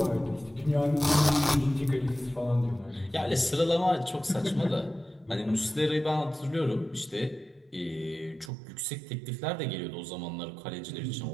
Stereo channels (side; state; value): left; drops out; at 8.5 s